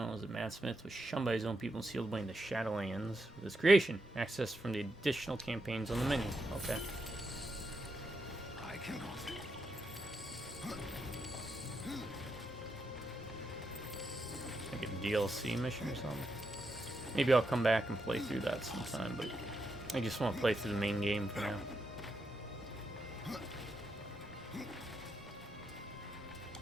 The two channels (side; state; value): both; normal; correlation 0.83